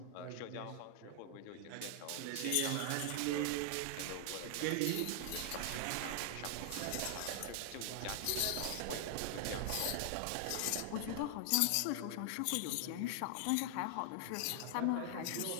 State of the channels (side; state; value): both; different; correlation 0.00